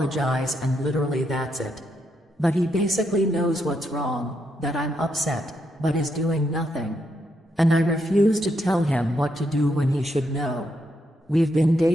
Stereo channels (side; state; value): both; normal; correlation 0.79